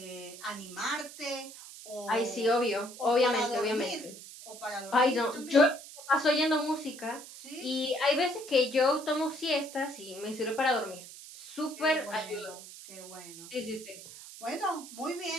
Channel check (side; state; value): right; noise; hiss, 15 dB below the sound